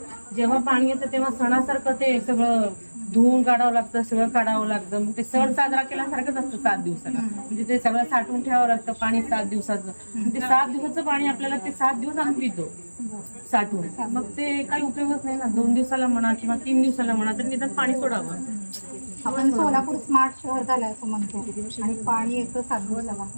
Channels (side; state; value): both; inverted; correlation -1.00